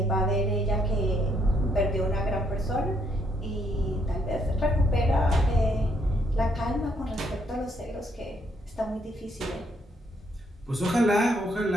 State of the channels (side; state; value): both; normal; correlation 0.72